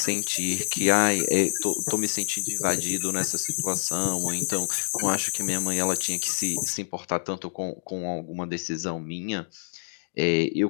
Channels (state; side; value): silent; right; digital silence